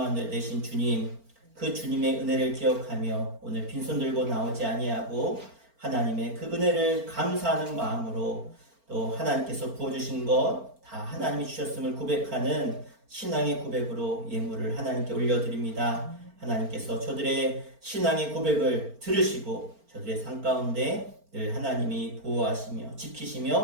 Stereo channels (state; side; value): late; left; 4.4 ms